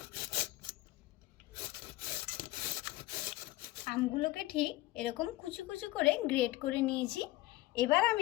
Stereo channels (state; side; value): quieter; right; 18.3 dB